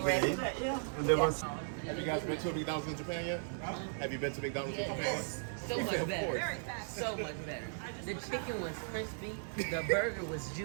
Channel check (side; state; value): left; silent; digital silence